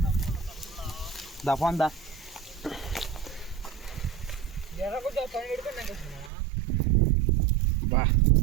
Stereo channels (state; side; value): drops out; left; at 6.3 s